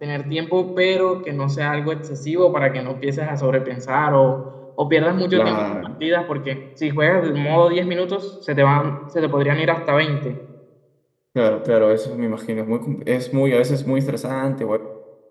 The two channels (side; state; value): both; identical; correlation 1.00